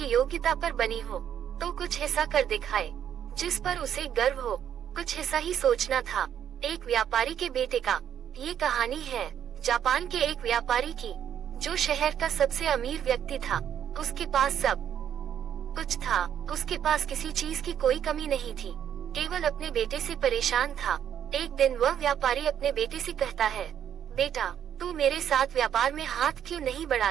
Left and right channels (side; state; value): left; quieter; 9.5 dB